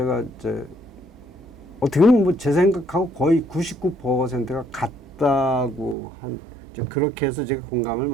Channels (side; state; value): left; drops out; at 6.0 s